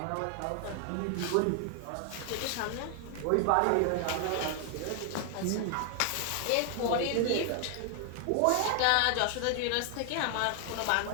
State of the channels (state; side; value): different; both; correlation 0.00